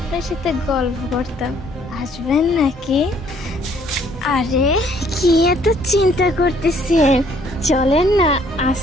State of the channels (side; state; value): both; normal; correlation 0.63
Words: সাথে গল্প করতাম। আসবেন নাকি? আরে কি এত চিন্তা করতেছেন, চলেন না